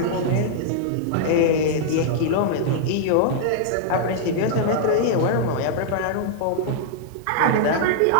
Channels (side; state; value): both; different; correlation -0.01